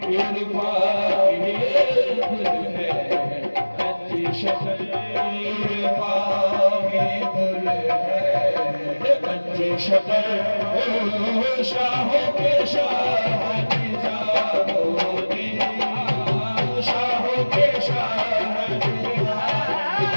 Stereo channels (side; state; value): both; inverted; correlation -1.00